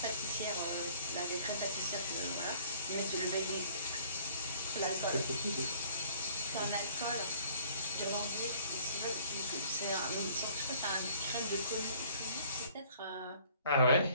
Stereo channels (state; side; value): inverted; both; correlation -0.56